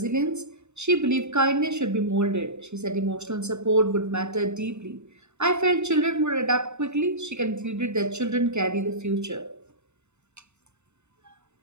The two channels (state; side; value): late; left; 0.82 ms